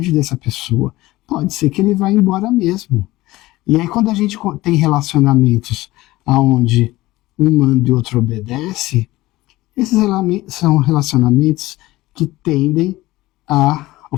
dessa pessoa. Pode ser que ele vá embora mesmo. E aí quando a gente tem relacionamentos onde um manda e o outro obedece, esses são relacionamentos que tendem ao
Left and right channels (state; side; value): quieter; right; 18.2 dB